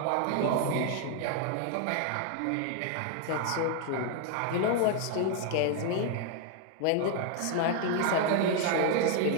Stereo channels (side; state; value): both; different; correlation 0.00